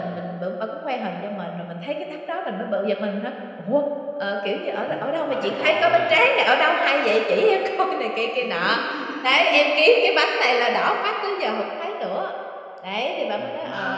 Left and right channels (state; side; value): identical; both; correlation 1.00